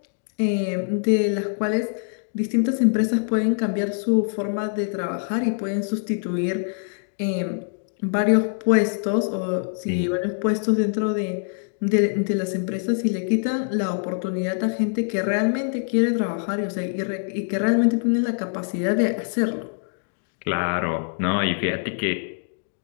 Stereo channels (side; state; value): right; silent; digital silence